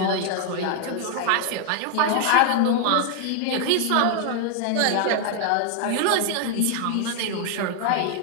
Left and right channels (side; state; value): both; different; correlation 0.00